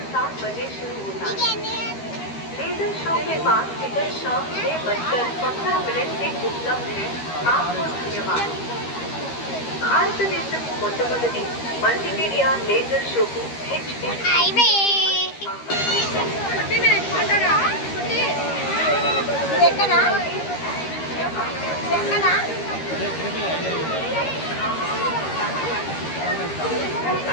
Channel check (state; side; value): late; right; 13 ms